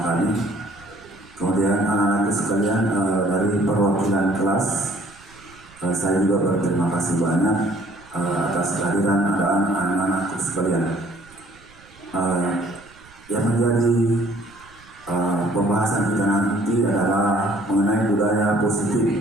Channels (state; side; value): noise; right; rumble, 26 dB below the sound